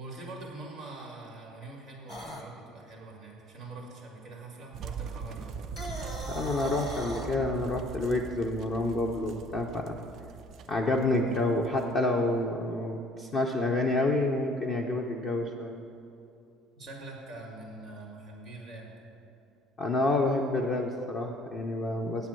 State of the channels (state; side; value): normal; both; correlation 0.57